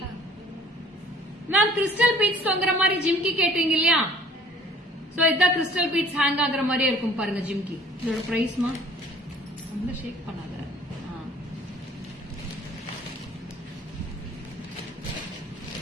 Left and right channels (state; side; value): normal; both; correlation 0.53